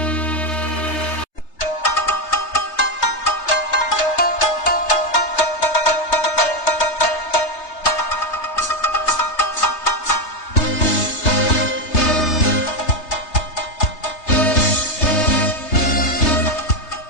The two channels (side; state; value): right; late; 3.3 ms